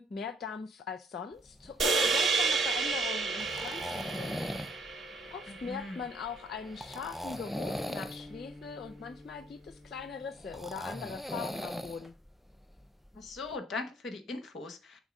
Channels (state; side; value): normal; both; correlation 0.64